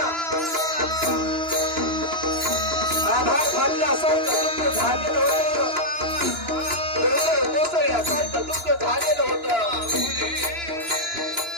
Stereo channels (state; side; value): late; left; 2.9 ms